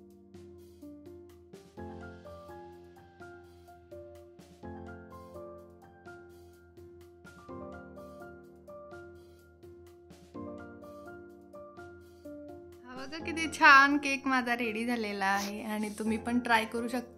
बघा किती छान केक माझा रेडी झालेला आहे आणि तुम्ही पण ट्राय करू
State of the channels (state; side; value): identical; both; correlation 1.00